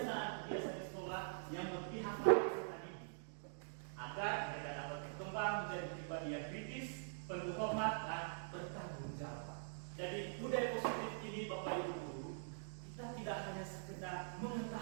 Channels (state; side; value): silent; left; digital silence